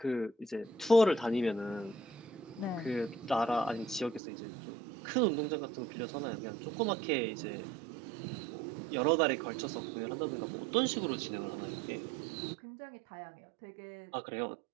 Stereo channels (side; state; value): left; drops out; at 4.2 s